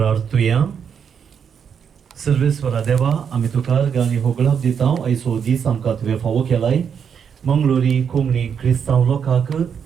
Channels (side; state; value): left; quieter; 7.3 dB